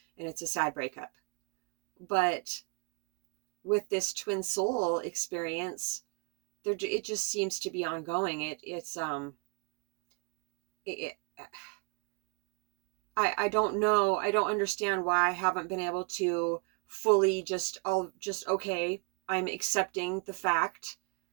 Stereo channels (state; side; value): quieter; left; 32.2 dB